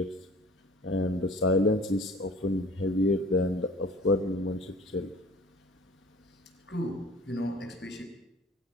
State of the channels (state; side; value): normal; both; correlation 0.45